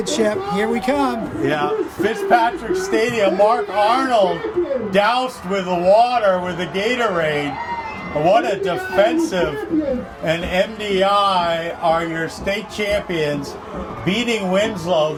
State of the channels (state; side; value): identical; both; correlation 1.00